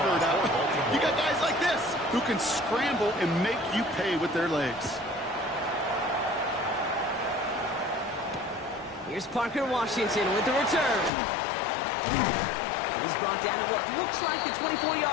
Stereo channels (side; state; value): right; drops out; at 11.1 s